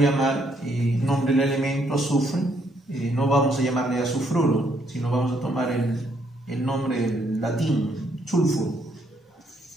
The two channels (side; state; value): both; normal; correlation 0.71